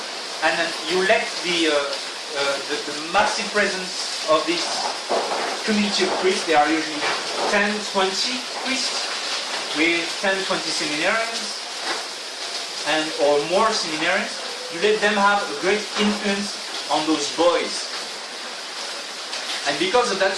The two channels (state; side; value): identical; both; correlation 1.00